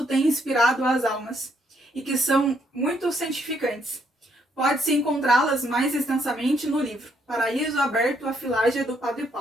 tem inspirado às almas e que são muito santificantes. Pode-se encontrá-las mais extensamente no livro Paraíso Aberto à Filágia do Padre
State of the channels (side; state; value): both; normal; correlation 0.72